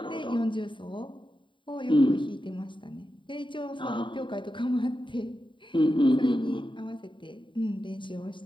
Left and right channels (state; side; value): late; right; 0.23 ms